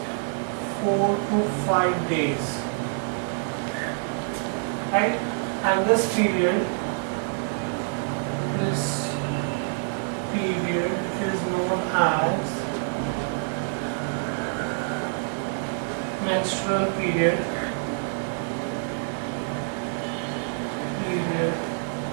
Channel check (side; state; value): left; silent; digital silence